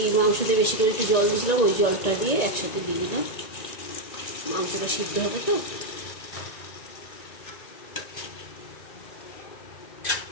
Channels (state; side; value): late; right; 1.9 ms